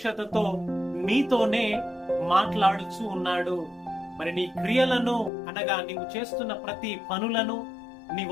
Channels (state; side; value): drops out; right; at 5.3 s